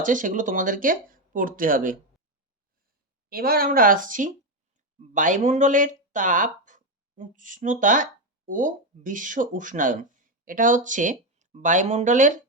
সেগুলো তোমাদেরকে পড়তে হবে। এবার আমরা আসছি বায়ুমণ্ডলের তাপ, উষ্ণতা ও বিশ্ব উষ্ণায়ন। এটা হচ্ছে বায়ুমণ্ডলের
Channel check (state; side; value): normal; both; correlation 0.09